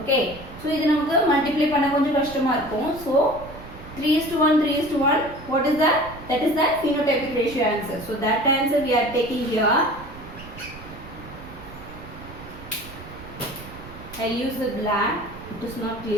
so இது நமக்கு multiply பண்ண கொஞ்சம் கஷ்டமா இருக்கும். So 3:1 what is that? That is the phenotypic ratio answer. So that answer we are taking here. I use the black, it is not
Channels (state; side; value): noise; right; rumble, 16 dB below the sound